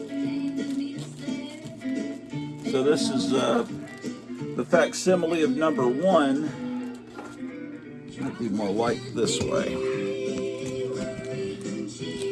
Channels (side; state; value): both; identical; correlation 1.00